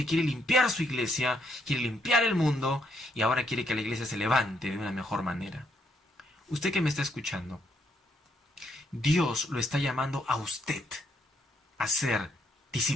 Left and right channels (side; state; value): both; normal; correlation 0.74